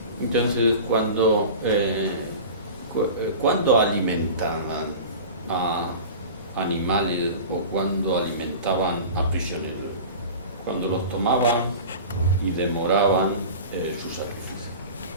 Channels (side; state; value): both; inverted; correlation -0.35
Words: Entonces, cuando ¿Cuándo alimentaban a animales o cuándo alimentaban a prisioneros? Cuando los tomaban y demoraban su sacrificio.